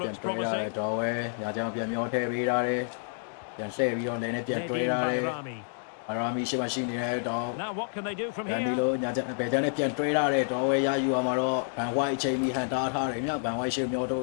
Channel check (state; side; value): silent; right; digital silence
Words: promising. Nedim Bayrami. အရာမီရှိမရှိနေတဲ့တော့ Now what can they do from ဒီ here? လိုညာချက်ပဲတန်းနဲ့ပြန်တွေးရတဲ့တော့ဝဲရယူရမှာတော့ဘန်ဝိုက်အချိန်ကြီးဟန်တာထားတယ်မြောက်ဘန်ဝိုက်ရှေ့မျောတို